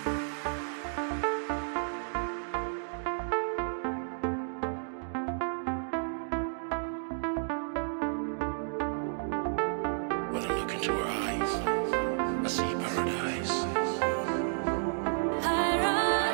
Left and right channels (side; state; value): left; silent; digital silence